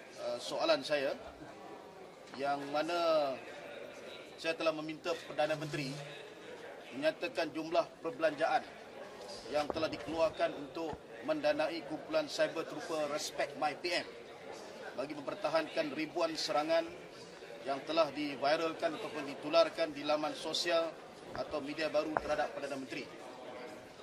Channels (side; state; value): both; identical; correlation 1.00